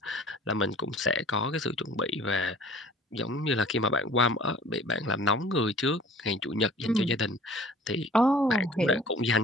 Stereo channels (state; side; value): normal; both; correlation 0.48